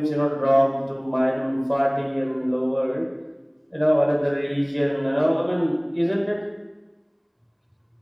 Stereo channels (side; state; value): both; identical; correlation 1.00